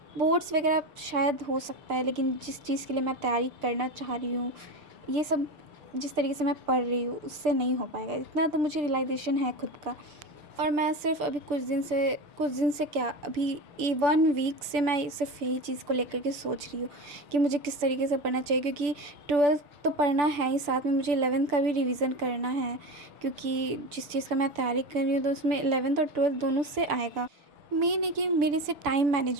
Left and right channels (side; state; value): left; late; 6.9 ms